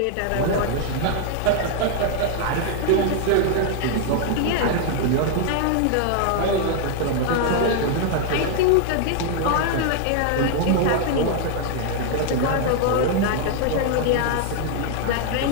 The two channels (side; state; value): both; different; correlation 0.00